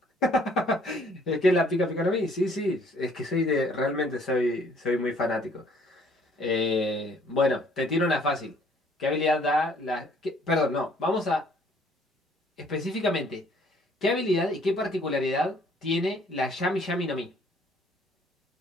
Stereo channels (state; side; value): normal; both; correlation 0.60